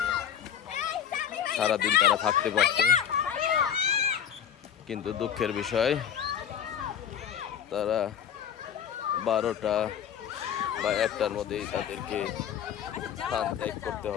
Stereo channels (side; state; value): right; quieter; 8.9 dB